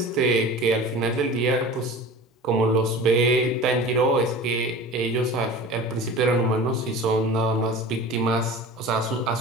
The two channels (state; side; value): normal; both; correlation 0.37